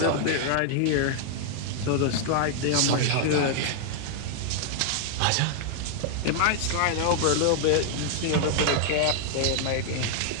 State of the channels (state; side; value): different; both; correlation -0.01